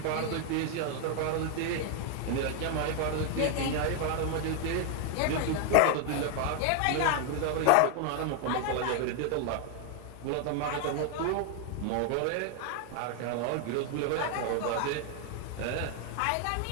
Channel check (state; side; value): different; both; correlation 0.00